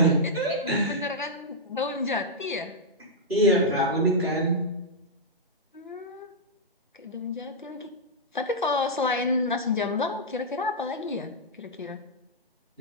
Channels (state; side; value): normal; both; correlation -0.08